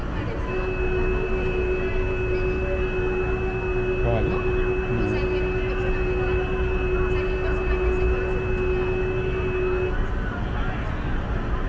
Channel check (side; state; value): both; identical; correlation 1.00